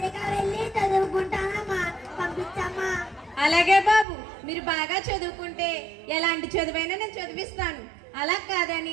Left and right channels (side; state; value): left; drops out; at 4.0 s